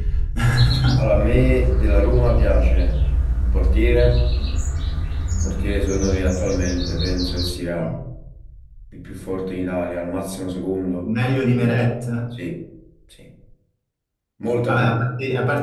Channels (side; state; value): both; identical; correlation 1.00